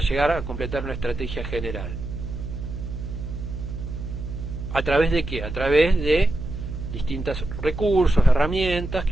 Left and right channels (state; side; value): noise; right; hum, 7 dB below the sound